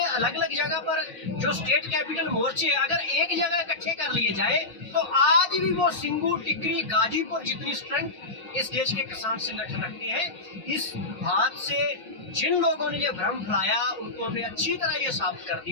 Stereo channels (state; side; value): quieter; right; 3.0 dB